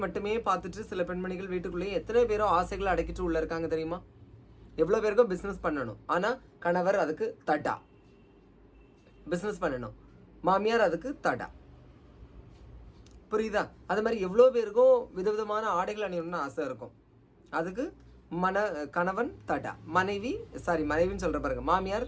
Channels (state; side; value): identical; both; correlation 1.00